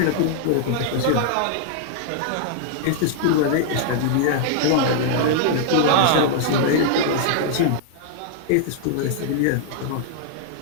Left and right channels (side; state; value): both; different; correlation -0.01